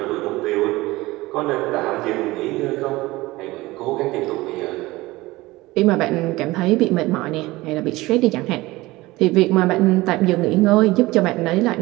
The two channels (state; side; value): quieter; left; 19.8 dB